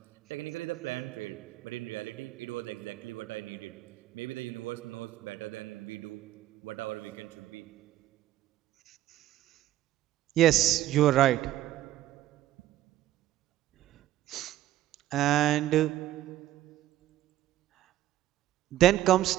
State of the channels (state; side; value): quieter; left; 13.9 dB